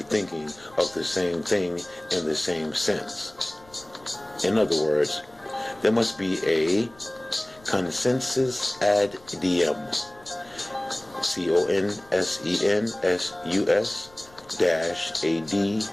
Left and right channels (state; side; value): noise; left; rumble, 26 dB below the sound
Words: thinking of the same thing in the same sense. In other words, there must be a consensus ad diem,